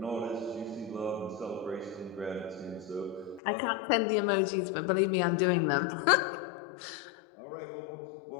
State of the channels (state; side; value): drops out; right; at 3.4 s